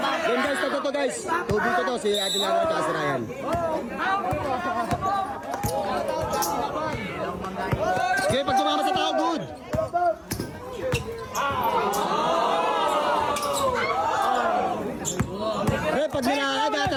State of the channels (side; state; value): both; identical; correlation 1.00